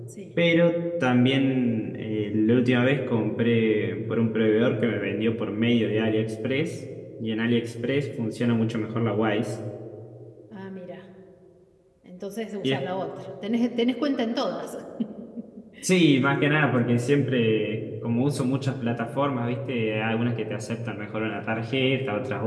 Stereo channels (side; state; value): both; identical; correlation 1.00